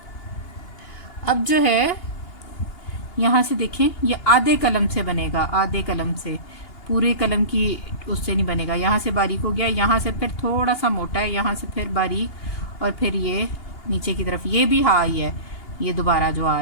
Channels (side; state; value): right; late; 2.8 ms